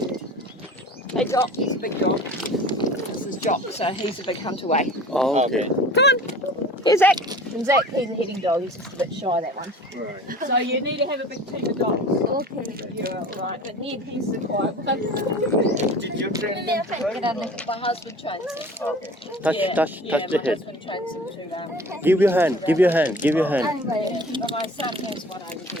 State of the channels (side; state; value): both; normal; correlation 0.43